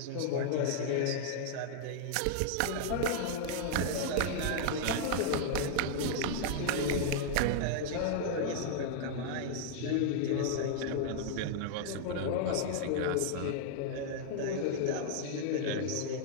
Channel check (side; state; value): both; different; correlation -0.01